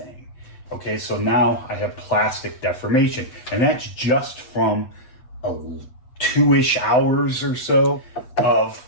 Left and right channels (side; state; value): right; late; 8.2 ms